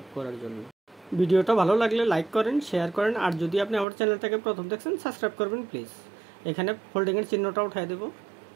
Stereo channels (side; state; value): left; drops out; at 3.9 s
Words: করার জন্য। ভিডিওটা ভালো লাগলে লাইক করেন, শেয়ার করেন, আর যদি আপনি আমার চ্যানেলটাকে প্রথম দেখছেন সাবস্ক্রাইব করবেন প্লিজ। এখানে ফোল্ডিংয়ের চিহ্নটা উঠাই দেব,